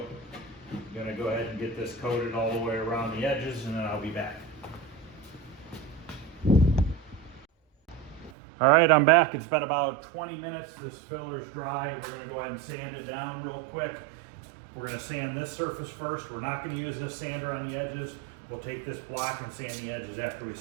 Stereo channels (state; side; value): drops out; left; at 8.3 s